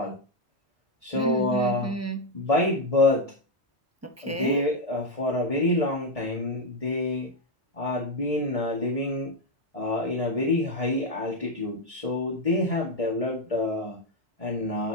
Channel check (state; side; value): normal; both; correlation 0.04